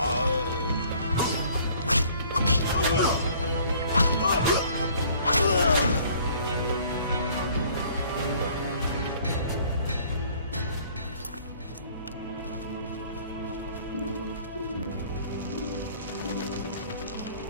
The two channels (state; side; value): inverted; both; correlation -0.55